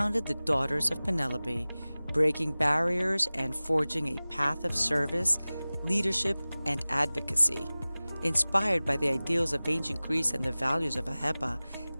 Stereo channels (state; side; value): inverted; both; correlation -0.98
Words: the Daughters of Penelope, breaking barriers and forging a path of service, leadership, and advocacy. Inspired by the ideals of ancient Greece and the values of AHEPA,